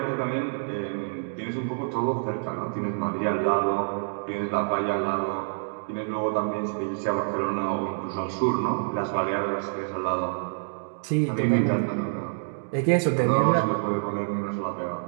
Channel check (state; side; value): silent; left; digital silence